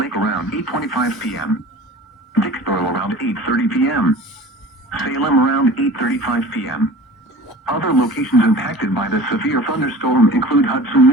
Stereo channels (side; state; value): both; normal; correlation 0.40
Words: around 8:25 p.m., Dixboro around 8:30 p.m., Salem around 8:35 p.m. Other locations impacted by the severe thunderstorm include Hudson